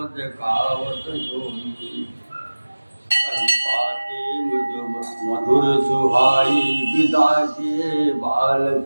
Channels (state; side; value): inverted; both; correlation -1.00